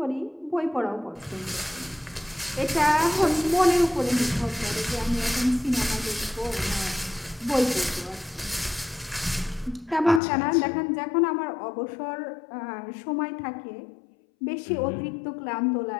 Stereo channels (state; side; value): drops out; right; at 10.2 s